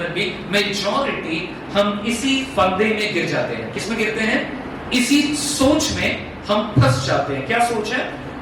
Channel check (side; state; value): both; identical; correlation 1.00